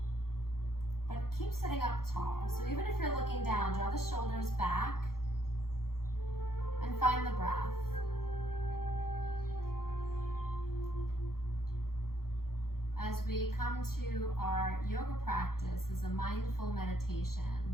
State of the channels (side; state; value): right; late; 0.93 ms